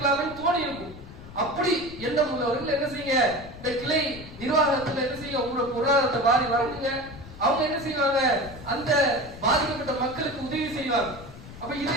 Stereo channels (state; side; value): noise; left; rumble, 16 dB below the sound